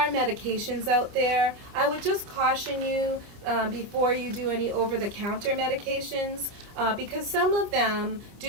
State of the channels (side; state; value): left; late; 30 ms